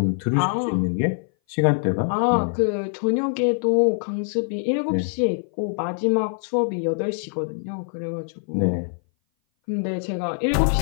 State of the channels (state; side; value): silent; right; 59 dB below the other